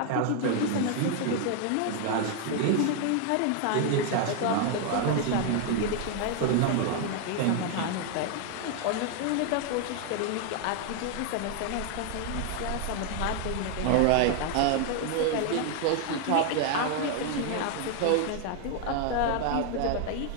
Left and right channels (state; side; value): different; both; correlation 0.00